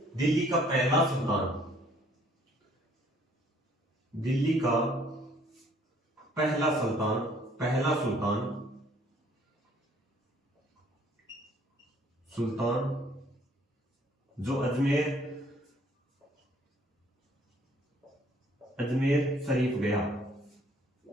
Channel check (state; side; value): normal; both; correlation 0.60